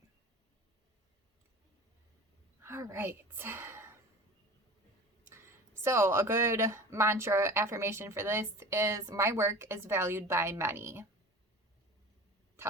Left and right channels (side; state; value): both; normal; correlation 0.37